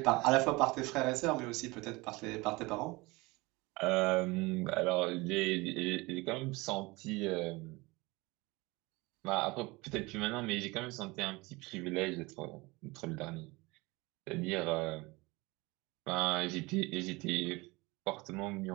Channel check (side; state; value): left; quieter; 23.4 dB